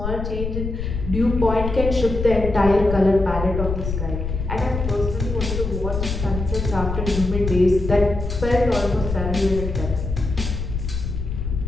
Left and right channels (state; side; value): noise; left; rumble, 4 dB below the sound